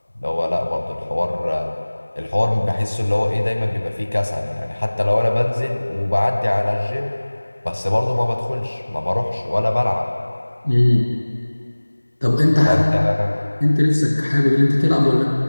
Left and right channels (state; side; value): inverted; both; correlation -1.00